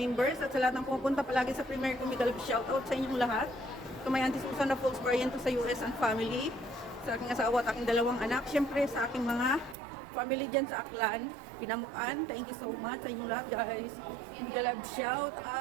at sa lahat ng pumupunta palagi sa premiere ko, mega love shoutout sa inyong lahat. To my Auntie Susan na Folks Barriento sa US and family, sa aking asawa at aking dalawang anak, syempre sa aking mga family dyan sa Aklan, Pinamukan, thank you so much sa inyong lahat guys. Mega love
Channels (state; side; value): drops out; left; at 9.8 s